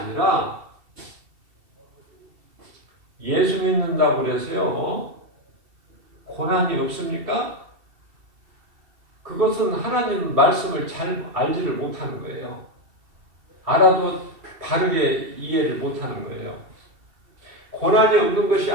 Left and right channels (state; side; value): late; left; 2.7 ms